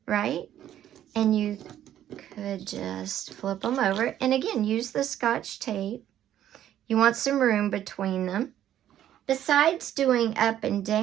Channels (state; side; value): quieter; left; 11.4 dB